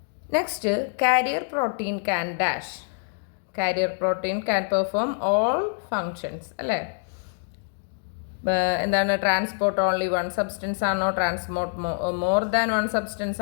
Next, carrier protein can dash. Carrier protein can perform all functions അല്ലേ? എന്താണ്? ട്രാൻസ്പോർട്ട് ഓൺലി വൺ സബ്സ്റ്റൻസ് ആണോ? Transport more than one substance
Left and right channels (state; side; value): silent; right; 61 dB below the other